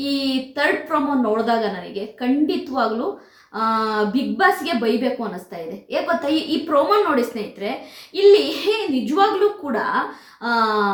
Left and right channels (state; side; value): identical; both; correlation 1.00